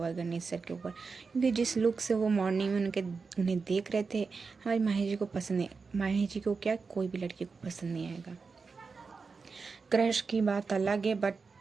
है गणेश सर के ऊपर, क्योंकि जिस लुक से वो मॉर्निंग में उन्हें देख रहे थे, हमारी माही जी को पसंद नहीं। माही जी को क्या, कोई भी लड़की को पसंद नहीं आएगा। क्रश की बात अलग है, बट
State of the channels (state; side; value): quieter; left; 4.8 dB